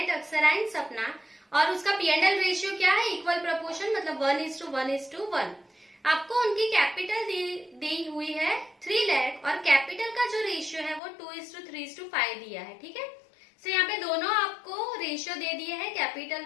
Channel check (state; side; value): drops out; right; at 11.0 s